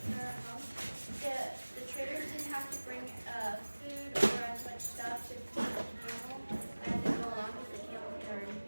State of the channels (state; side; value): inverted; both; correlation -1.00